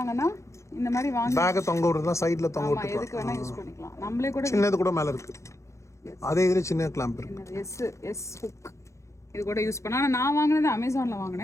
இந்த மாதிரி வாங்கி பேக் தொங்க விடுறதா, சைடுல தொங்க விட்டுக்கலாம். எதுக்கு வேணா யூஸ் பண்ணிக்கலாம். நம்மளே கூட சின்னது கூட மேல இருக்கு. அதே இதுல சின்ன கிளாம்ப் இருக்கு. S hook. இது கூட யூஸ் பண்ணா. நான் வாங்குனது அமேசான்ல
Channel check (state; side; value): late; right; 0.14 ms